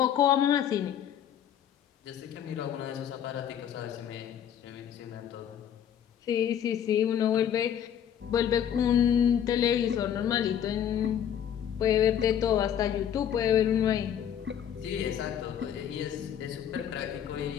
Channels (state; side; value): quieter; right; 9.4 dB